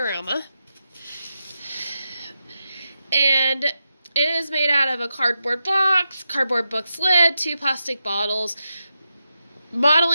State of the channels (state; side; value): inverted; both; correlation -0.88